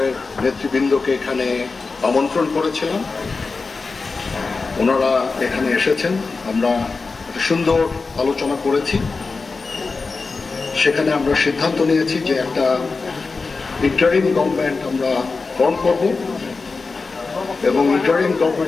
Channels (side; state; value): right; quieter; 4.2 dB